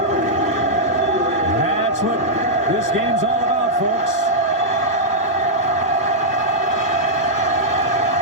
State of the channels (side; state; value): both; normal; correlation -0.09